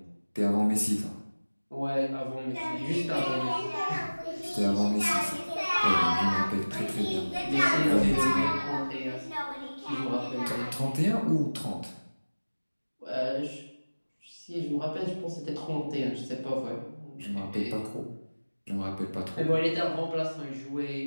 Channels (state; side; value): inverted; both; correlation -1.00